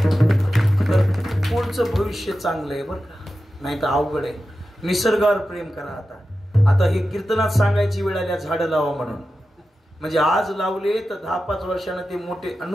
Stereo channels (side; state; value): both; normal; correlation 0.92